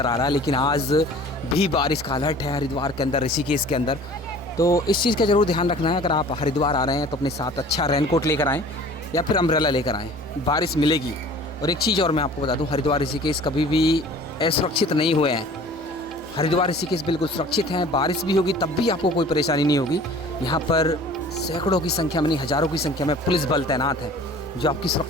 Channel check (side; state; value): both; normal; correlation 0.46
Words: आ रहा है, लेकिन आज भी बारिश का अलर्ट है हरिद्वार के अंदर, ऋषिकेश के अंदर। तो इस चीज़ का ज़रूर ध्यान रखना है। अगर आप हरिद्वार आ रहे हैं तो अपने साथ अच्छा रेनकोट लेकर आएँ या फिर अम्ब्रेला लेकर आएँ, बारिश मिलेगी। और एक चीज़ और मैं आपको बता दूं, हरिद्वार ऋषिकेश कभी भी असुरक्षित नहीं हुए हैं। हरिद्वार ऋषिकेश बिल्कुल सुरक्षित हैं, बारिश भी होगी तब भी आपको कोई परेशानी नहीं होगी। यहाँ पर सैकड़ों की संख्या में नहीं हज़ारों की संख्या में पुलिस बल तैनात है जो आपकी